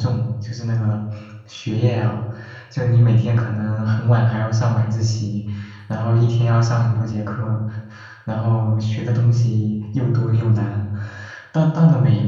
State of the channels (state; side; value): identical; both; correlation 1.00